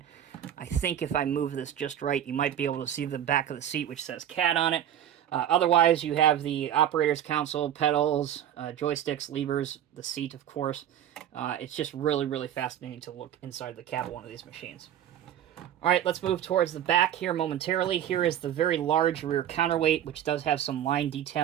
I think if I move this just right, you might be able to see the back of the seat, which says CAT on it. Otherwise, you have the operator's console, pedals, joysticks, levers, the seat, of course. It's just really, really fascinating to look inside the cab of one of these machines. All right, let's move towards the back here momentarily. Here is the very large rear counterweight, which does have some line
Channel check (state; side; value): quieter; left; 10.5 dB